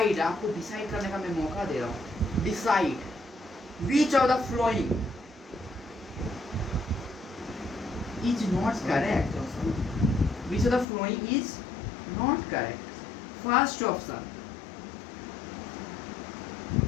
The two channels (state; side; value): drops out; right; at 10.9 s